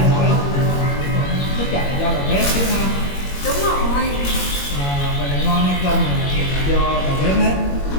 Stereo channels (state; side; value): late; right; 21 ms